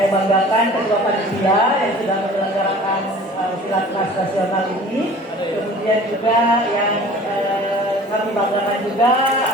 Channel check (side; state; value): both; normal; correlation 0.45